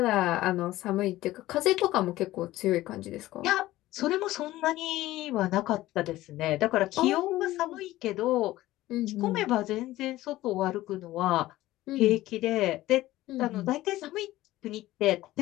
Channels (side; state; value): right; quieter; 16.3 dB